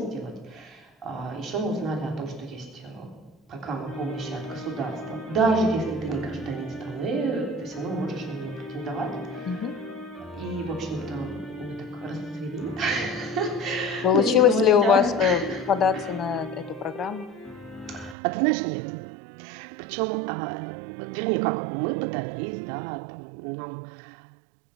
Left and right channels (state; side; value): drops out; left; at 18.2 s